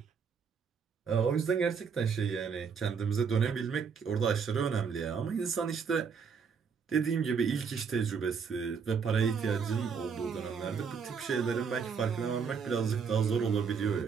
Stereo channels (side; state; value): left; quieter; 6.1 dB